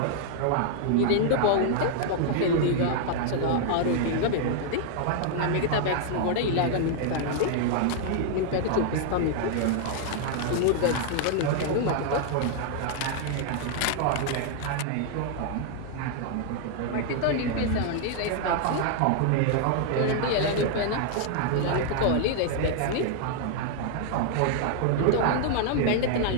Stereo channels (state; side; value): different; both; correlation 0.00